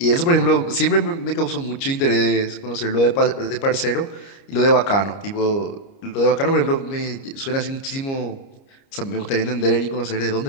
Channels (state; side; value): late; right; 30 ms